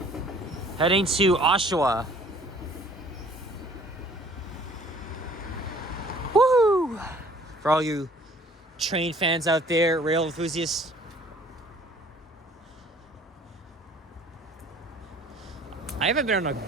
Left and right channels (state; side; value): normal; both; correlation 0.55